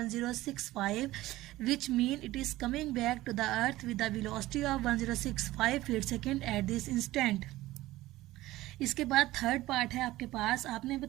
which mean it is coming back to the earth with the velocity of 1065 feet second at this instant। इसके बाद थर्ड पार्ट है आपके पास, आपने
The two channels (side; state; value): left; quieter; 17.0 dB